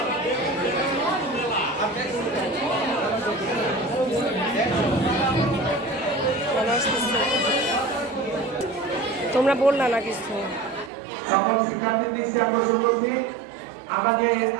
তোমরা বললা না কিছু সকল শিক্ষার্থীর দৃষ্টি আকর্ষণ করছি আমরা যে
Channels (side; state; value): left; drops out; at 10.9 s